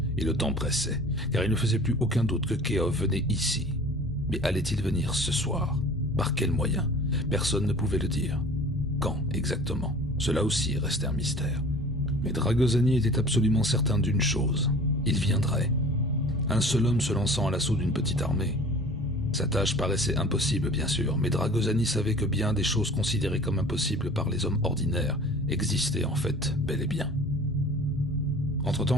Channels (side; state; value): both; normal; correlation 0.44